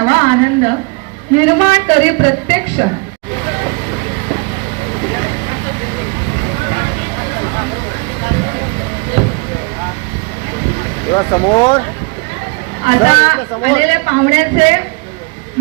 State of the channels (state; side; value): quieter; left; 30.6 dB